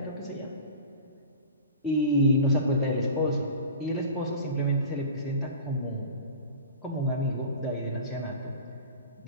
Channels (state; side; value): inverted; both; correlation -0.35